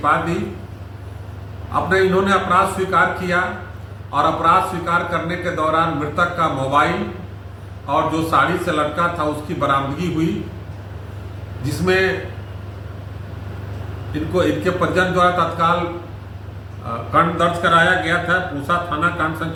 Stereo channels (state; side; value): identical; both; correlation 1.00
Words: दी। इन्होंने अपराध स्वीकार किया और अपराध स्वीकार करने के दौरान मृतक का मोबाइल और जो साड़ी से लटका था उसकी बरामदगी हुई, जिसमें इनके परिजन द्वारा तत्काल कांड दर्ज कराया गया था। पूसा थाना कांड